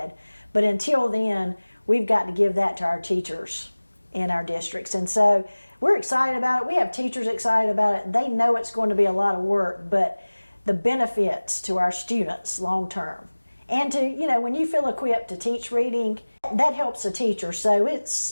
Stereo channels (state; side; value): inverted; both; correlation -1.00